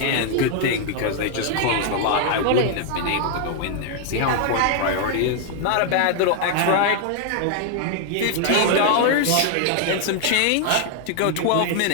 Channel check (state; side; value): different; both; correlation 0.00